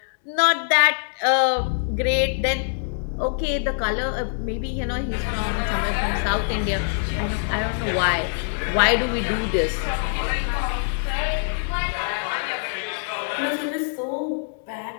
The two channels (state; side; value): silent; right; 61 dB below the other